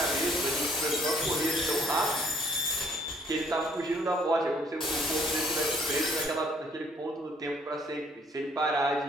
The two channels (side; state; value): both; normal; correlation 0.62